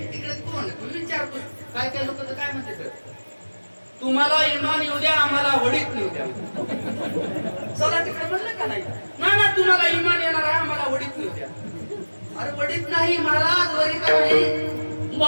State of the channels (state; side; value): inverted; both; correlation -1.00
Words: तिकडे कोण तुम्ही विचारतो, काय काय लोक तर काय म्हणते, तुम्हाला इमान येऊ द्या आम्हाला वडीत येऊ द्या. चला तिकडे म्हणलं का नाही, ना तुम्हाला इमान येणार आहे आम्हाला वडीत येऊ द्या. अरे वडीत नाही महाराज, वरी का नाही